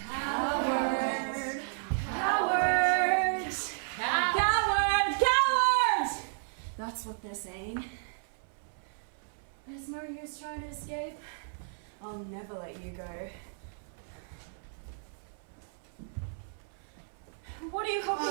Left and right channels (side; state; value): left; silent; 56 dB below the other